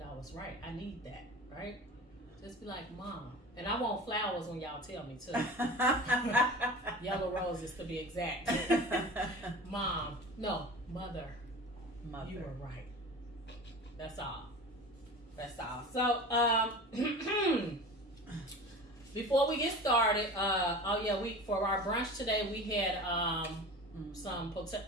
I was right. I need that, right? Just be like, Mom. And I want flowers when y'all tell me to. Yellow roses to be exact. Mom. No, Mother. You were right. That's all. That's all. So, before we get started, for our brunch today, we had some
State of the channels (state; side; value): normal; both; correlation 0.36